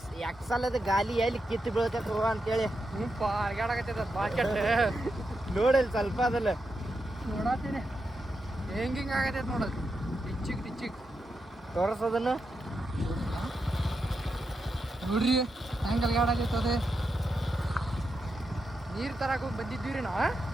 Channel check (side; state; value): both; normal; correlation 0.86